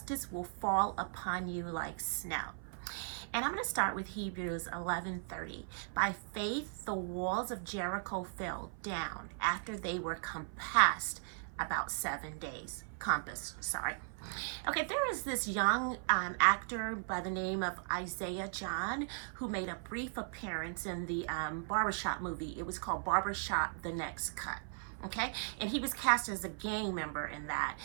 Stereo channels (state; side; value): silent; left; 53 dB below the other